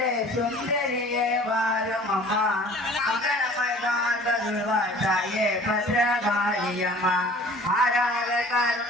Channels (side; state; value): both; normal; correlation 0.48